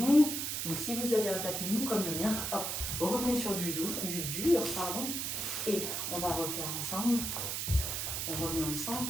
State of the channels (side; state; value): right; noise; hiss, 2 dB below the sound